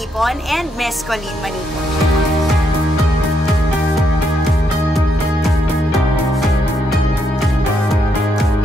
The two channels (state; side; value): normal; both; correlation 0.77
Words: and Miss Colleen Manipon.